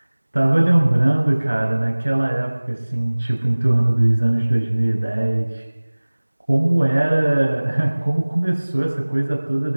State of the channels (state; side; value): inverted; both; correlation -1.00